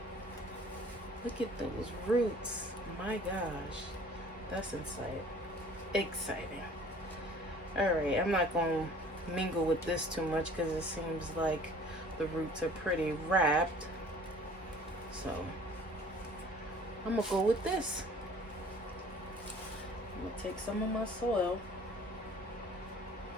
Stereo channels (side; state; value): both; normal; correlation 0.50